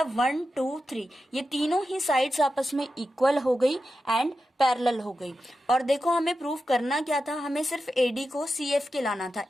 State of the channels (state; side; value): normal; both; correlation 0.91